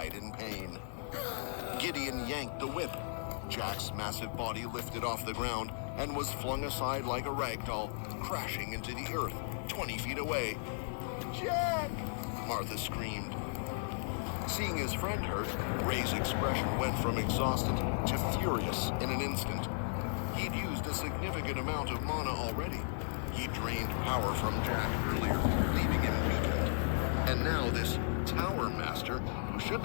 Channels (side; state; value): right; silent; digital silence